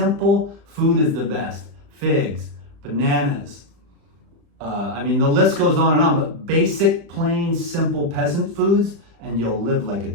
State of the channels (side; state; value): left; late; 35 ms